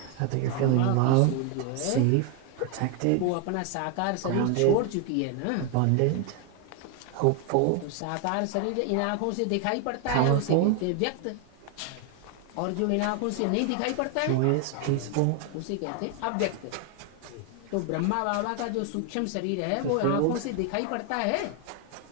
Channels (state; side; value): different; both; correlation 0.01